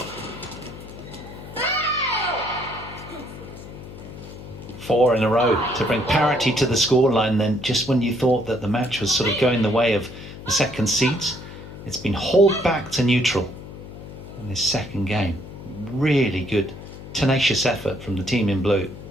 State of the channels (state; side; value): noise; left; hum, 14 dB below the sound